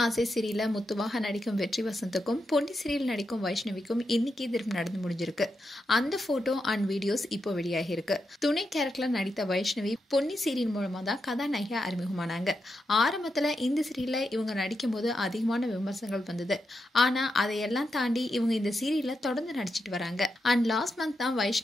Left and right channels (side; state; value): both; normal; correlation 0.86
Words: ஆசை சீரியல்ல முத்துவாக நடிக்கும் வெற்றி வசந்துக்கும் பொன்னி சீரியல் நடிக்கும் வைஷ்ணவிக்கும் இன்னைக்கு திரும்ப நடந்து முடிஞ்சிருக்கு. அந்த போட்டோ அண்ட் வீடியோஸ் இப்போ வெளியாகி இருக்கு. துணை கேரக்டர்ல நடித்த வைஷ்ணவி பொன்னி சீரியல் மூலமா தான் கதாநாயகியா அறிமுகமானாங்க. ஆரம்பத்துல இந்த சீரியல்ல இவங்க நடிக்கும் போது அதிகமான விமர்சனங்கள் வந்தது. ஆனா அதையெல்லாம் தாண்டி இவங்க இந்த சீரியல்ல தொடர்ந்து நடிச்சிட்டு வராங்க. அண்ட் லாஸ்ட் மந்த் தான்